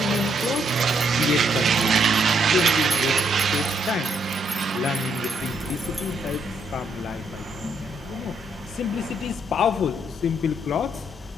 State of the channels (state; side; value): normal; both; correlation 0.74